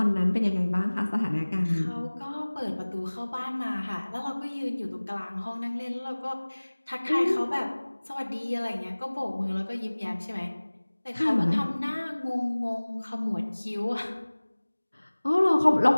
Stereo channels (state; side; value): inverted; both; correlation -1.00